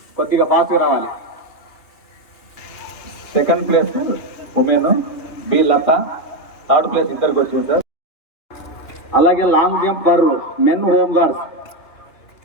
కొద్దిగా ఫాస్ట్గా రావాలి. 2nd place women B Latha, 3rd place ఇద్దరికి వచ్చింది సార్. అలాగే long jump for men home guards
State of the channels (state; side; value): late; right; 2.9 ms